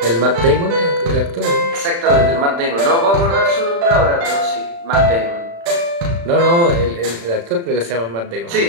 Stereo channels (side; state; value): left; late; 35 ms